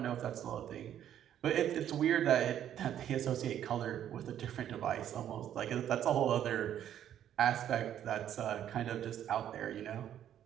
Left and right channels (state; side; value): quieter; left; 10.5 dB